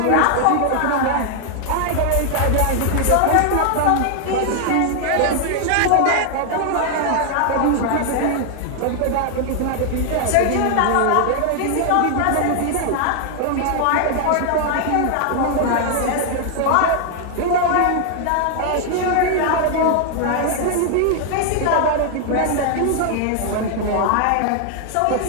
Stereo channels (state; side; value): different; both; correlation 0.00